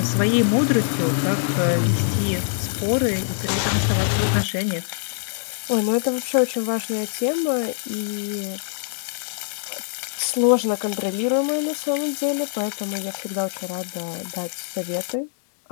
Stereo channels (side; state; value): right; silent; digital silence